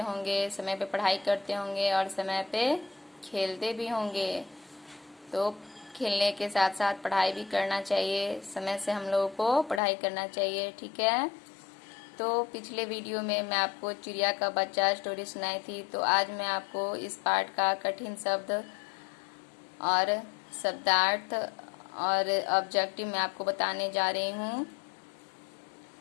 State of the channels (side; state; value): right; drops out; at 9.8 s